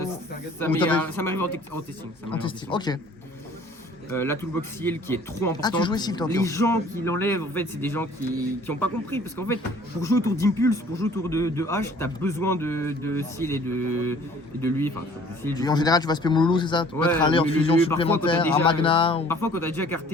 ou t'avais- m'arrive en testing. ça en m'arrive testing. Ok. La toolbox seal qui est trop importante. Ah, tu jouais seal, toi, Les ok. gens qui l'enlèvent, en fait, c'est des gens qui ont pas compris. Parce qu'en fait, pour jouer autour d'Impulse, pour jouer autour de H, t'as besoin de seal et de lui. Enfin, de seal, du Et en coup. général, tu vas spammer Moulou, c'est ça? Tu peux Ouais, mettre un leurre mais fusion parfois, quand t'as supplémentaire, un déjà- magna. Ou... Parfois, quand t'as déjà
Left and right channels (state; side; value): normal; both; correlation 0.53